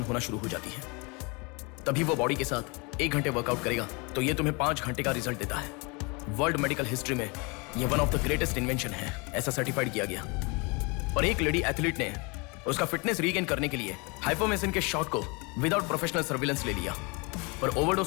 होना शुरू हो जाती है। तभी वो बॉडी के साथ 1 घंटे वर्कआउट करेगा तो ये तुम्हें 5 घंटे का रिजल्ट देता है। वर्ल्ड मेडिकल हिस्ट्री में ये one of the greatest invention है, ऐसा सर्टिफाइड किया गया। और एक लेडी एथलीट ने उसका फिटनेस रीगेन करने के लिए हाइपोमेसिन के शॉट को विदाउट प्रोफेशनल सर्विलेंस ले लिया, पर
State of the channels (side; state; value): right; quieter; 29.3 dB